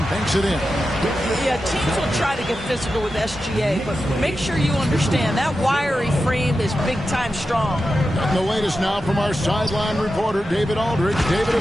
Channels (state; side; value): normal; both; correlation 0.91